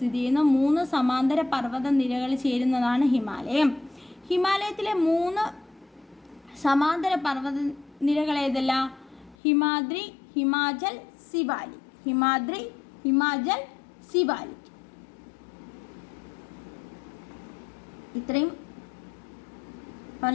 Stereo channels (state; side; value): drops out; right; at 9.3 s